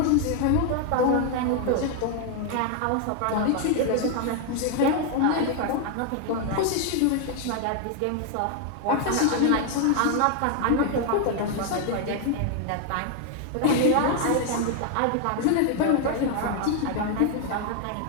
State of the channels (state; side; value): different; both; correlation 0.00